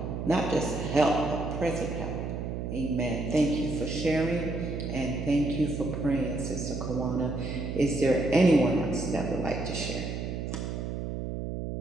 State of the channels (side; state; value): right; noise; hum, 4 dB below the sound